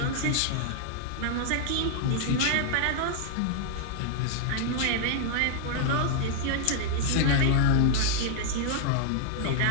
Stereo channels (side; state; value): both; different; correlation 0.00